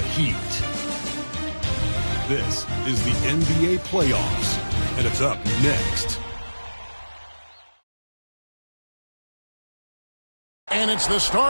This is the NBA Playoffs, and it's up next. And it's the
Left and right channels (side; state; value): both; inverted; correlation -1.00